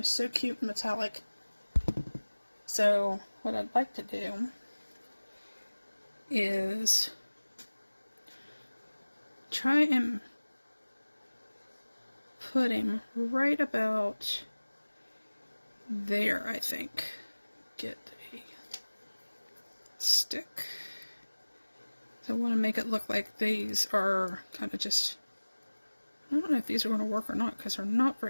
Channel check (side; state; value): both; inverted; correlation -1.00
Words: so cute and metallic. So what I'd like to do is try and put him right about there, I think. Get a stick. So I want to make it look like these are kind of just, I don't know if these are going to work or not because they're not